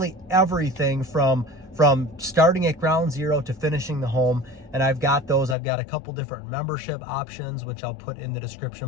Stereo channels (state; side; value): drops out; right; at 5.6 s